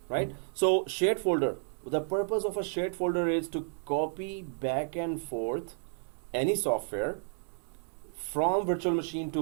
right? So shared folder. The purpose of a shared folder is to copy back and forth any software from virtual machine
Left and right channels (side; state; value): left; silent; digital silence